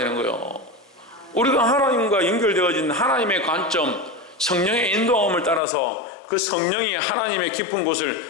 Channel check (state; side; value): drops out; right; at 5.6 s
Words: 거예요. 우리가 하나님과 연결되어진 하나님의 관점, 성령의 인도함을 따라서 그 성령이 하나님의 깊은